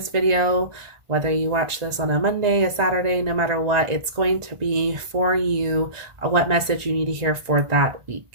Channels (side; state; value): left; late; 1.4 ms